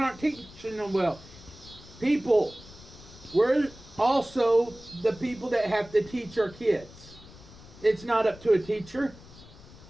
teaching them well. People, we're also the people that have to teach our kids. It's not up to a teacher.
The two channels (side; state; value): left; noise; rumble, 20 dB below the sound